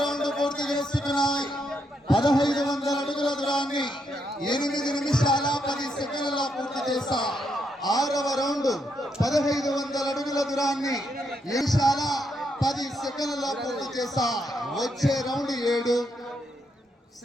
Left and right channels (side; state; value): both; normal; correlation 0.78